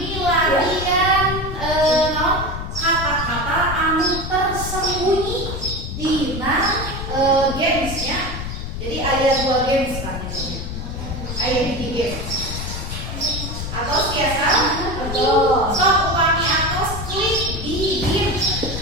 game. Atau biasa betul. So upami atos klik di game.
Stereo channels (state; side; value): noise; left; rumble, 6 dB below the sound